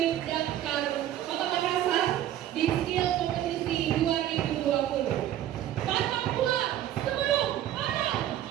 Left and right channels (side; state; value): left; quieter; 12.1 dB